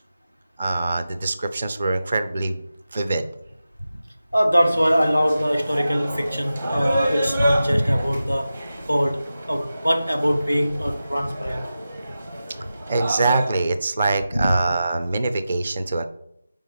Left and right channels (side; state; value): both; inverted; correlation -0.92